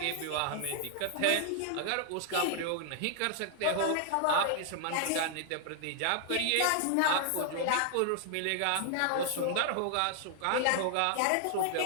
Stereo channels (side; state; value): both; different; correlation 0.00